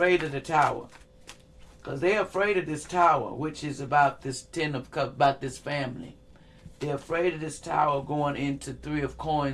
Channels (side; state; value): both; identical; correlation 1.00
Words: of the tower. Because they're afraid of this tower, which is about this 10 of cups, about this family. They're afraid of this tower going into 3 of